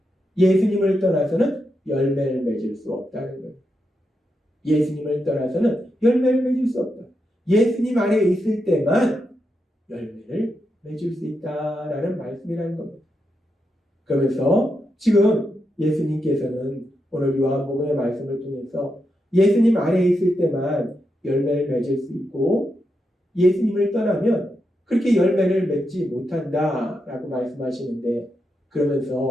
예수님을 떠나서는 열매를 맺을 수 없다는 거예요. 예수님을 떠나서는 열매를 맺을 수 없다. 예수님 안에 있을 때만 열매를 맺을 수 있다라는 말씀이라는 겁니다. 그러면서 지금 예수님께서는 오늘 요한복음의 말씀을 통해서 예수님 안에 있을 때만 열매를 맺을 수 있고, 예수님을 떠나면 그렇게 열매를 맺지 못한다라고 말씀하시는데,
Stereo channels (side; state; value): both; normal; correlation 0.85